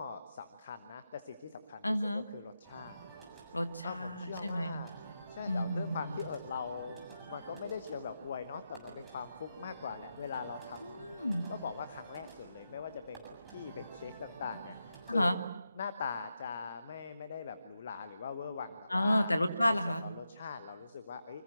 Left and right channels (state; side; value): inverted; both; correlation -0.87